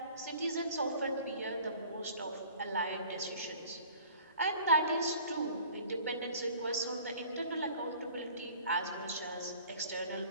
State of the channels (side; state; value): both; inverted; correlation -0.49